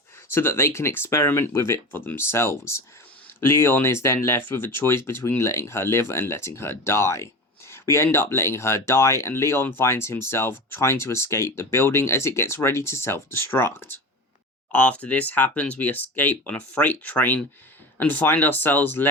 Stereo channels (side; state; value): both; normal; correlation 0.29